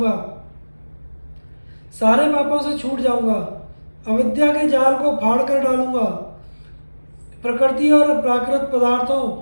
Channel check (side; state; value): both; inverted; correlation -1.00